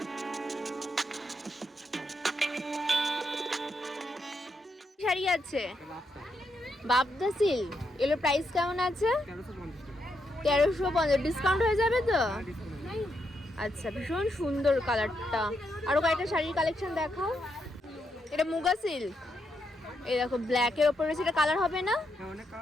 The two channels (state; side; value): normal; both; correlation 0.81